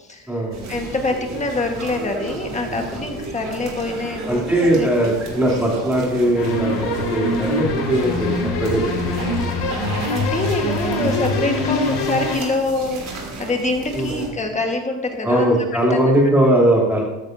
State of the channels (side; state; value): both; normal; correlation 0.47